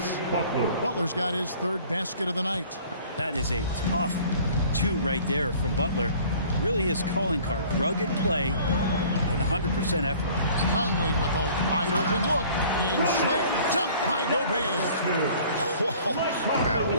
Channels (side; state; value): both; inverted; correlation -0.50